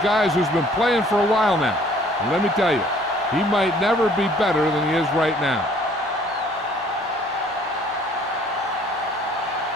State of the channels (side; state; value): both; normal; correlation 0.57